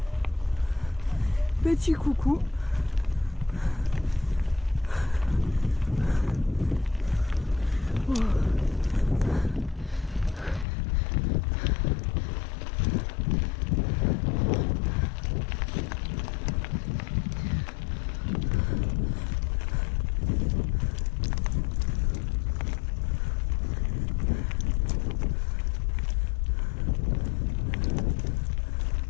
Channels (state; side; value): drops out; right; at 10.7 s